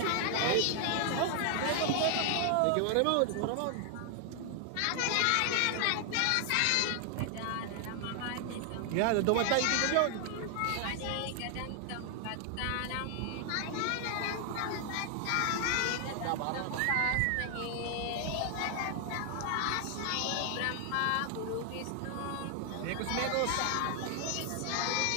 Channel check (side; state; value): both; different; correlation 0.00